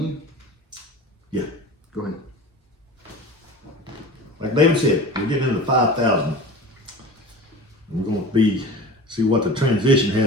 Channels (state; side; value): normal; both; correlation 0.35